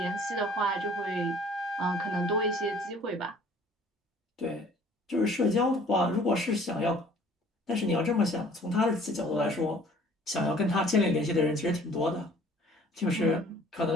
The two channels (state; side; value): normal; both; correlation 0.53